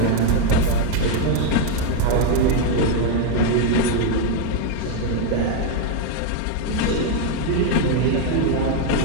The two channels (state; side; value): different; both; correlation 0.01